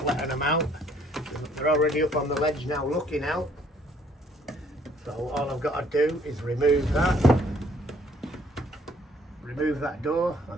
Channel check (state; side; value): normal; both; correlation 0.62